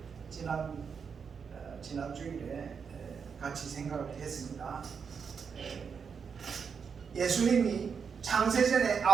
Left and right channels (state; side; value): quieter; left; 6.2 dB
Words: 지난 주일에 같이 생각을 했습니다. 예수님이 창세전에